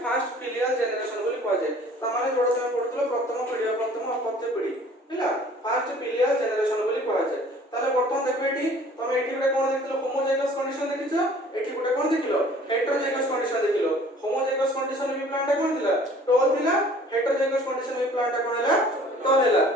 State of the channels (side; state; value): both; normal; correlation 0.51